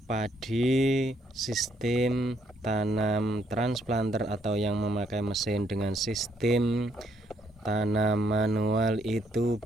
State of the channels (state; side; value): normal; both; correlation 0.71